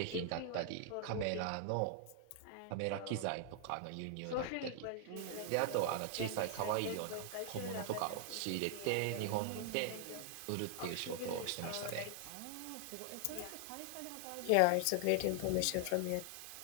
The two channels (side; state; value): both; different; correlation 0.00